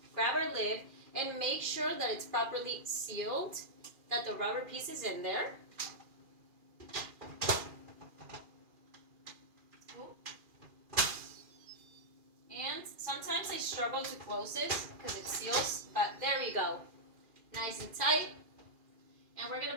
grab our lid, and make sure that it's properly sealed, that the rubber piece is in there. And sometimes I struggle to close this because it seals, but there we go. Nice and tight. And we're going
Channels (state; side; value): late; left; 2.4 ms